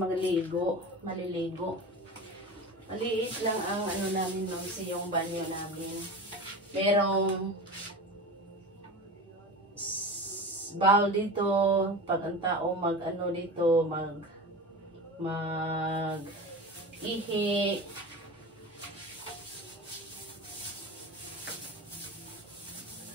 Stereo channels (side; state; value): both; normal; correlation 0.30